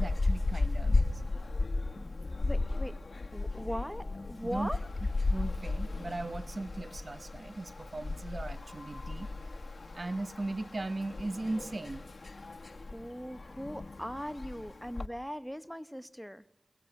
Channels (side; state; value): both; normal; correlation 0.97